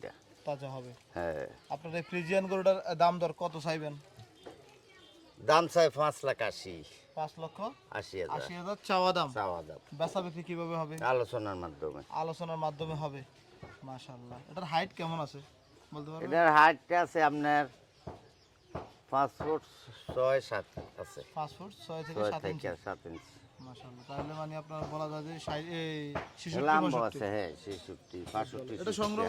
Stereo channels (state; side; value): identical; both; correlation 1.00